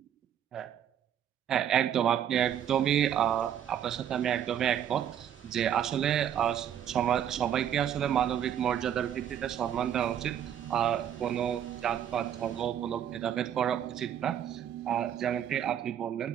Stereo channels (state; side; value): quieter; left; 9.7 dB